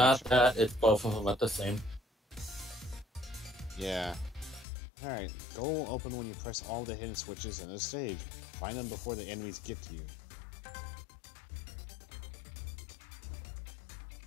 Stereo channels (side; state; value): right; drops out; at 4.7 s